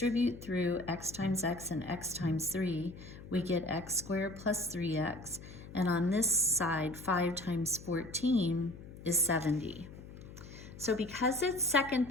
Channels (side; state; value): left; noise; hum, 15 dB below the sound